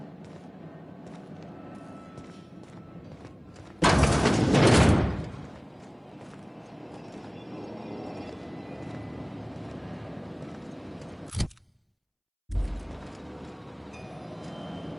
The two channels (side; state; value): both; identical; correlation 1.00